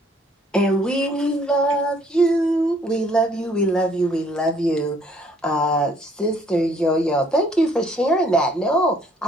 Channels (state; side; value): normal; both; correlation 0.62